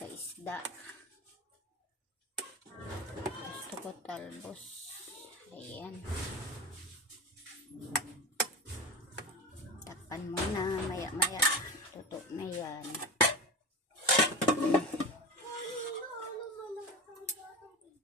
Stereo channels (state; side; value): normal; both; correlation 0.26